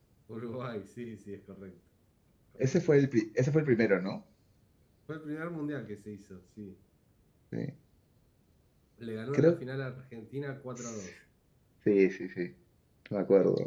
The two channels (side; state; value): both; identical; correlation 1.00